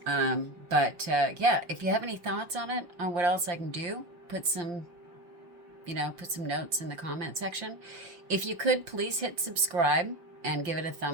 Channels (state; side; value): late; left; 5.8 ms